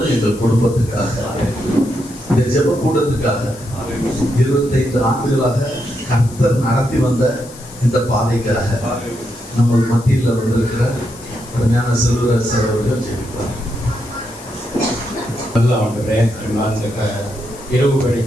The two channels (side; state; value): left; noise; hiss, 18 dB below the sound